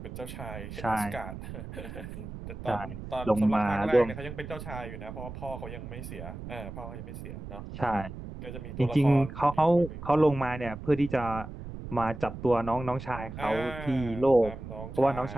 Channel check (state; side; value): noise; right; rumble, 10 dB below the sound